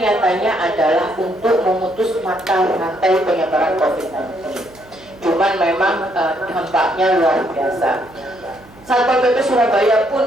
adalah untuk memutus mata rantai penyebaran COVID-19. Cuman memang dampaknya luar biasa. Satpol PP Surabaya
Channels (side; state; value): right; noise; hum, 26 dB below the sound